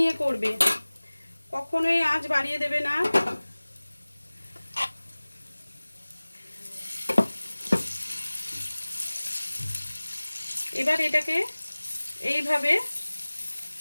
করবে, কখনোই আঁচ বাড়িয়ে দেবে না। এবার এটাকে এইভাবে,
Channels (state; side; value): inverted; both; correlation -1.00